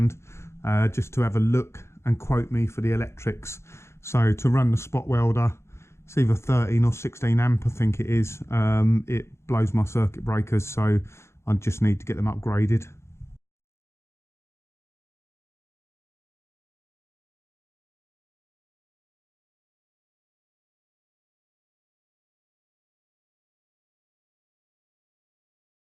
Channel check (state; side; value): late; right; 0.13 ms